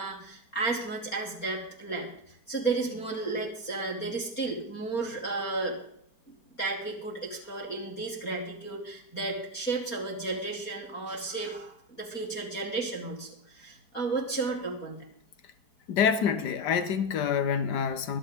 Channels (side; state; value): right; late; 4.2 ms